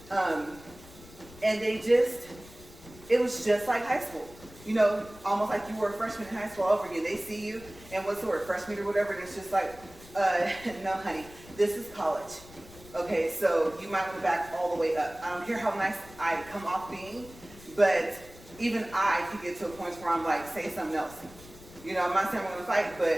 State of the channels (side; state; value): left; noise; rumble, 20 dB below the sound